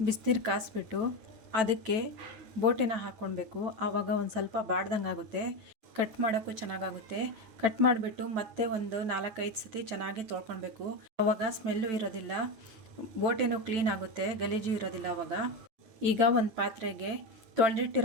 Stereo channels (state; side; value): late; left; 9.0 ms